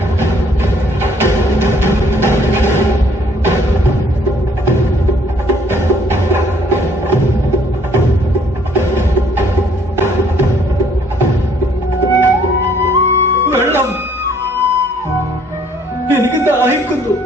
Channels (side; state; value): both; normal; correlation 0.62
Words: വെള്ളം. എനിക്ക് ദാഹിക്കുന്നു.